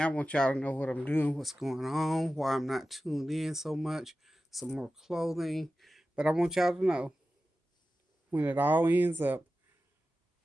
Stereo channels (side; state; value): both; normal; correlation 0.94